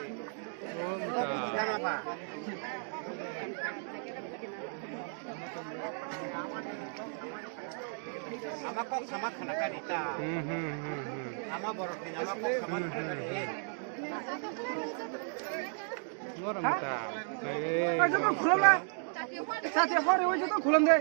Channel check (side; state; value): left; silent; 55 dB below the other